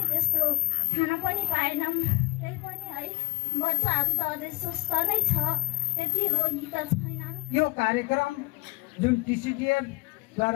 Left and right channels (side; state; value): right; quieter; 26.7 dB